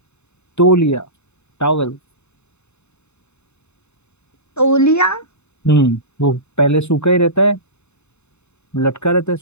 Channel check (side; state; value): right; late; 0.82 ms